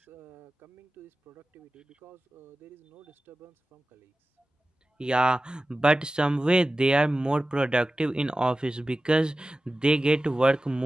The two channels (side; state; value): both; normal; correlation 0.95